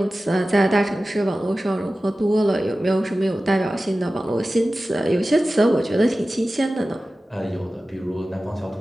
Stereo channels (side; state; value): both; normal; correlation 0.95